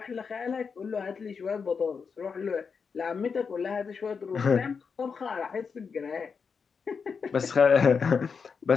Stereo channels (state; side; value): quieter; right; 5.7 dB